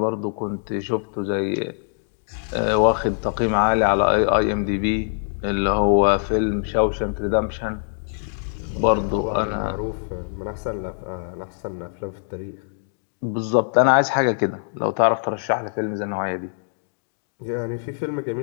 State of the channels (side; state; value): right; silent; digital silence